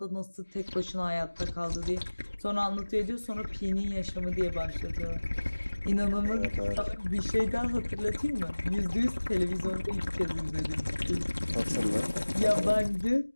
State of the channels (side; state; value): both; inverted; correlation -1.00